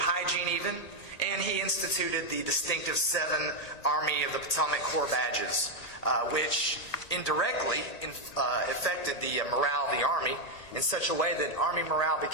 even, and he instituted the distinctive 7 Army of the Potomac Corps badges, which indirectly affected the morale of the Army in such a way that Army morale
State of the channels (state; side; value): late; right; 1.8 ms